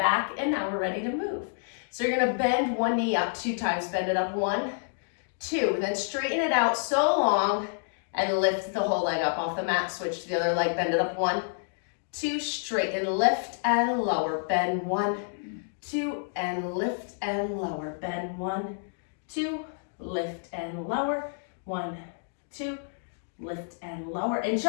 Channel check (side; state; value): right; silent; digital silence